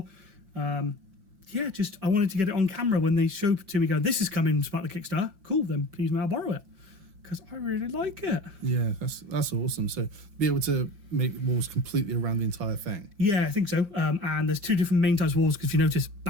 Yeah, just I wanted to get it on camera when they showed it to me. Go, this is coming as part of the Kickstarter. Cool, then please may I borrow it because I really like it. Yeah, that's awesome. So be able to make walls completely around the entire thing. Yeah, I think so. And there's two different main types of walls because if you notice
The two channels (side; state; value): left; late; 5.6 ms